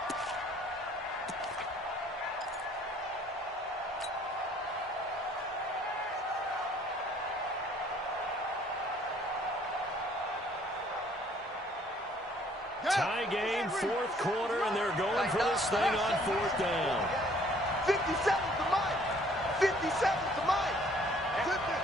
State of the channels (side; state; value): both; normal; correlation 0.59